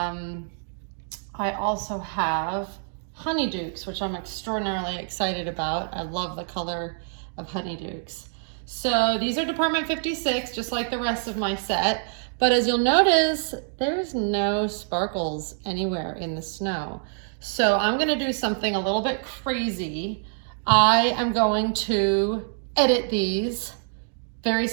also have honeydukes, which I'm extraordinarily excited about. I love the color of honeydukes. So these are Department 56, just like the rest of my set. But as you'll notice, there's no sparkles anywhere in the snow. So I'm gonna do something a little bit crazy. I am going to edit these very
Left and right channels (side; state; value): left; silent; 61 dB below the other